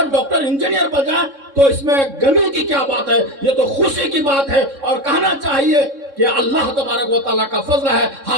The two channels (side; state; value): left; late; 3.6 ms